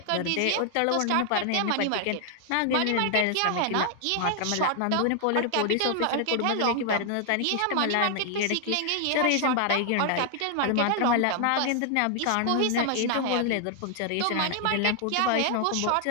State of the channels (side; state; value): both; different; correlation 0.00